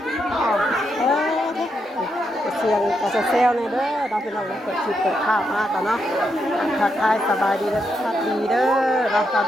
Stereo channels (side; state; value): both; normal; correlation 0.82